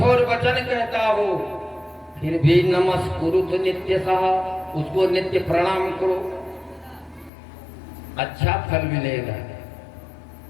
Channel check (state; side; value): drops out; right; at 7.3 s